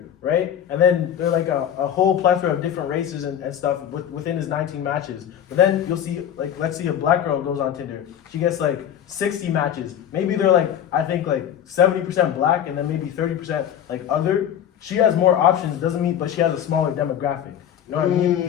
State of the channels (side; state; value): right; quieter; 9.8 dB